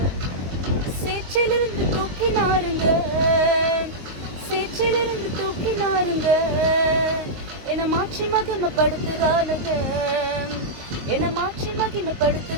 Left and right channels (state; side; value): late; left; 22 ms